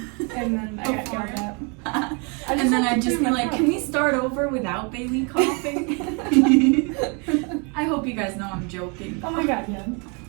And then I got yelled at. And then I'd just be like, can we start over without Bailey coughing? I hope you guys know I'm joking. Oh my god, yeah.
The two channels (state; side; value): quieter; left; 34.0 dB